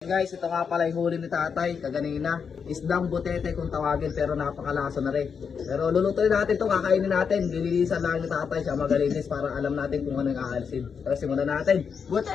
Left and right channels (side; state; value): right; quieter; 6.3 dB